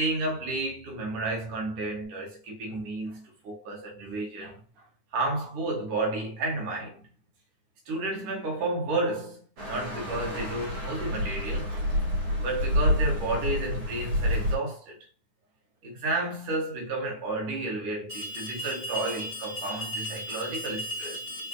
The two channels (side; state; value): left; late; 9.4 ms